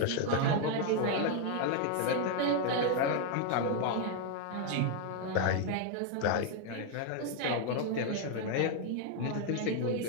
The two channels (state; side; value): different; both; correlation 0.01